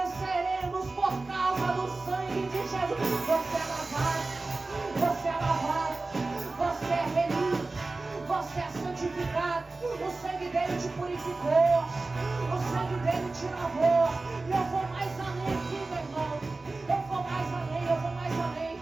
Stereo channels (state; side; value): quieter; left; 3.4 dB